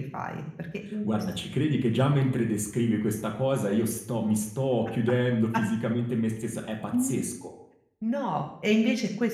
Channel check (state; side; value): identical; both; correlation 1.00